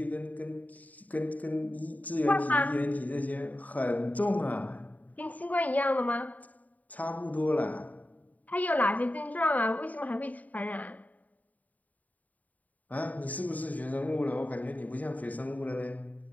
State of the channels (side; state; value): right; late; 0.074 ms